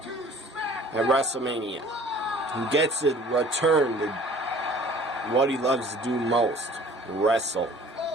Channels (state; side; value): normal; both; correlation 0.50